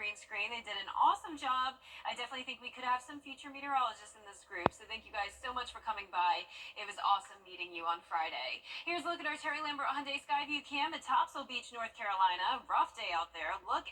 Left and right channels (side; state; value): both; identical; correlation 1.00